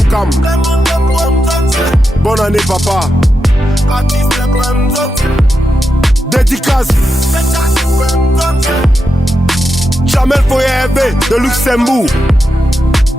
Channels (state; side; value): normal; both; correlation 0.87